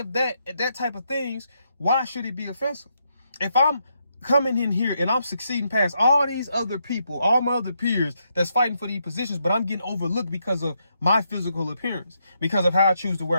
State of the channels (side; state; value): both; inverted; correlation -0.79